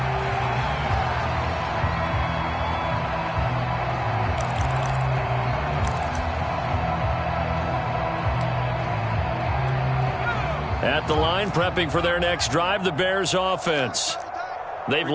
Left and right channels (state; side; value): identical; both; correlation 1.00